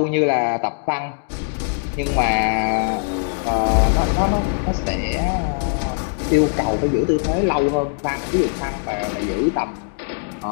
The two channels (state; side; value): silent; right; digital silence